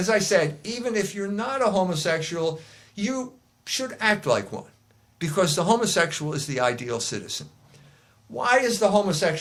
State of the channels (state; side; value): identical; both; correlation 1.00